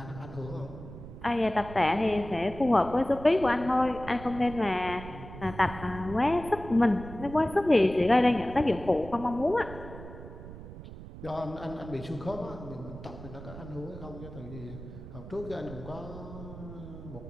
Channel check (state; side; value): noise; right; rumble, 13 dB below the sound